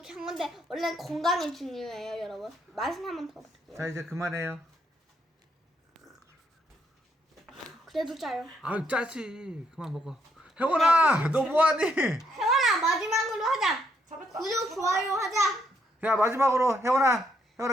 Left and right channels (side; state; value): both; normal; correlation 0.74